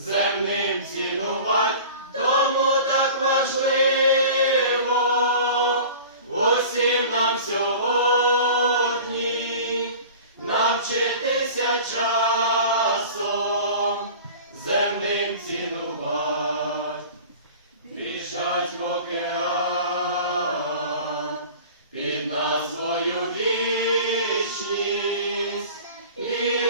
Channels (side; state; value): both; inverted; correlation -0.40